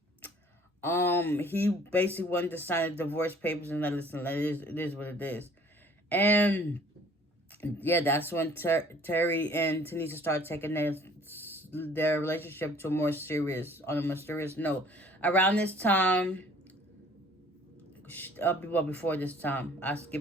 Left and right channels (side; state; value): both; normal; correlation 0.54